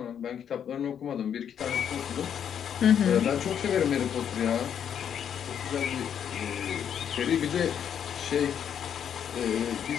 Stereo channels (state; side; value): quieter; right; 8.6 dB